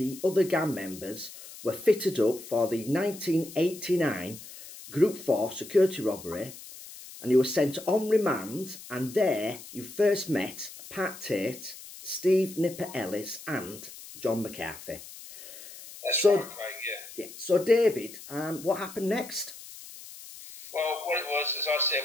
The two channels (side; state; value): left; noise; hiss, 15 dB below the sound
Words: other gang members were fitted up for the 1989 Group 4 security robbery, and you were sent on remand, and there you first met Pat Tate, Steve Nipper Ellis and John McCarthy. That's right, Craig, yeah. So David, what happened next? Well, what it was, as I